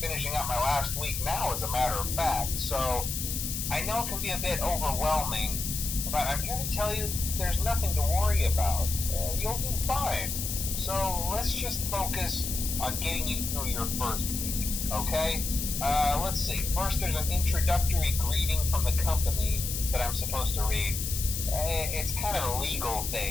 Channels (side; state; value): left; noise; hiss, 4 dB below the sound